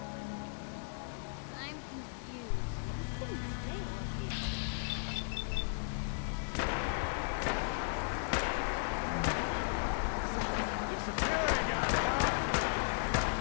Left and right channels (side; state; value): right; silent; digital silence